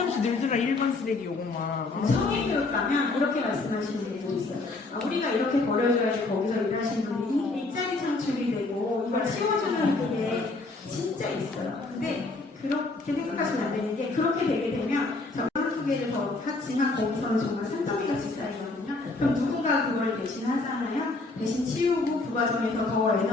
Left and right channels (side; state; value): right; quieter; 3.3 dB